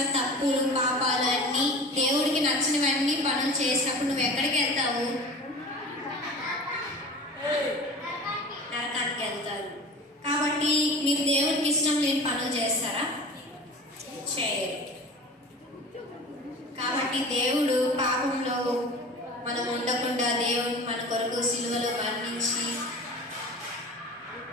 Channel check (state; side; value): normal; both; correlation 0.36